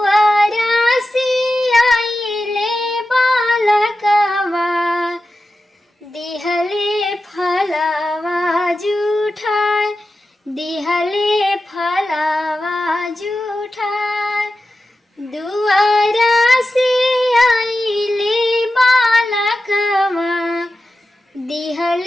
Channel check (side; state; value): both; normal; correlation 0.92